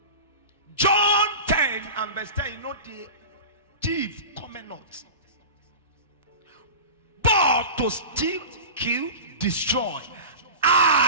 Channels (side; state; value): both; inverted; correlation -0.31